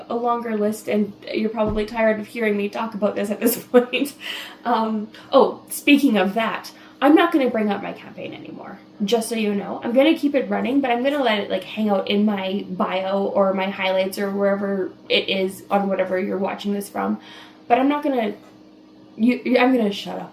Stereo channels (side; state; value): both; identical; correlation 1.00